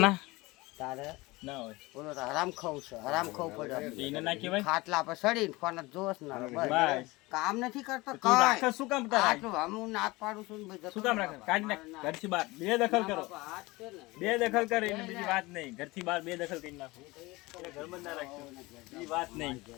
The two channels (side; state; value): right; quieter; 22.0 dB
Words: તારે ના હોય. બોલો તો હરામ ખાવું છે, હરામ ખાવું પડે. એને ના કહેવાય. ખાટલા પર સડીને કોને જોશ ના બસ. કામ નથી કરતો. તું રાખે શું કામ તારે? આટલું હું નાક પાડું છું ને શું કામ રાખે? કાઢી નાખ ઘરથી બહાર. બે દખલ કરો. બે દખલ કરે એને બીજી વાત નહીં. ઘરથી બહાર બે દખલ કરી નાખો. એટલે ઘર બંધ ના રાખજો. બીજી વાત નહીં.